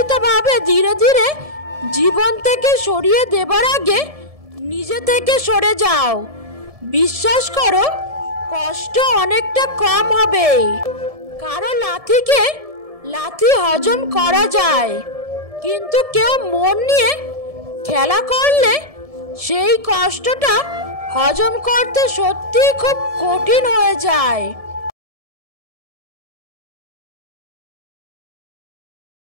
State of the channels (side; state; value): left; late; 1.7 ms